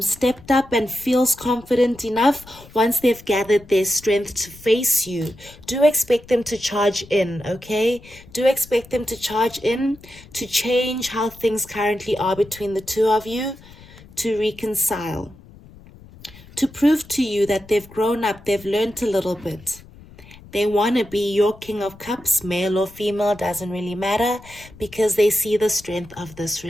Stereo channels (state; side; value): noise; left; rumble, 22 dB below the sound